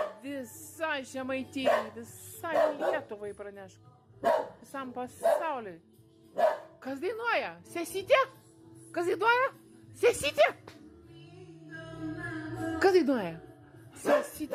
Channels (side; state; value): both; identical; correlation 1.00